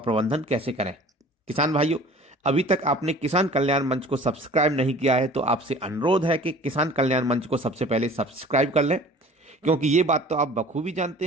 कैसे करें। किसान भाइयों, अभी तक आपने किसान कल्याण मंच को सब्सक्राइब नहीं किया है तो आपसे अनुरोध है कि किसान कल्याण मंच को सबसे पहले सब्सक्राइब कर लें, क्योंकि ये बात तो आप बखूबी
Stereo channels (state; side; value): normal; both; correlation 0.46